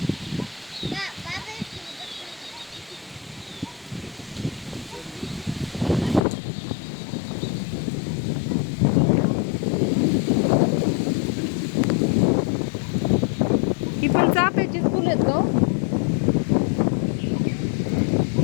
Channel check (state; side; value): drops out; right; at 6.2 s